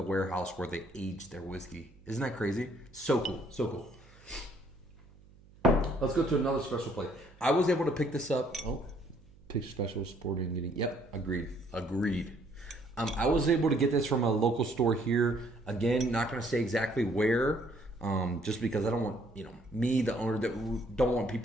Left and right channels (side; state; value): right; noise; hum, 25 dB below the sound